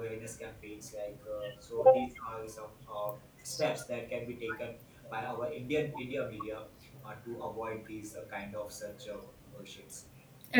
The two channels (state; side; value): identical; both; correlation 1.00